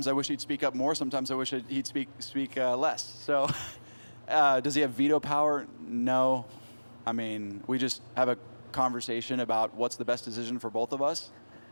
I wish he'd speak up more. Sometimes I wish he'd speak less. So, does he have veto power? No. I mean, we just have a conversation about what's the best decision for both of us.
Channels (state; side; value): inverted; both; correlation -1.00